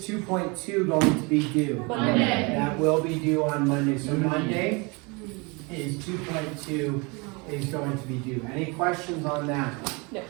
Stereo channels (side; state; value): left; quieter; 28.8 dB